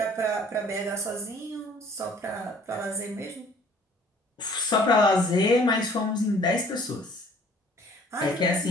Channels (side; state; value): both; normal; correlation 0.55